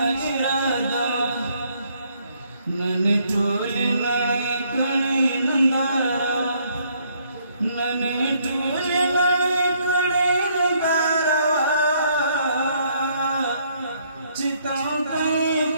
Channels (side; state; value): both; inverted; correlation -0.68